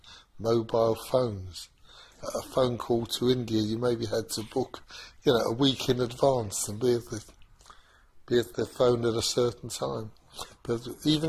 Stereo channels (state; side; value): identical; both; correlation 1.00